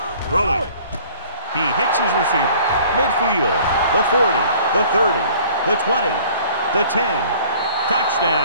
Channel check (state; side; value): inverted; both; correlation -0.51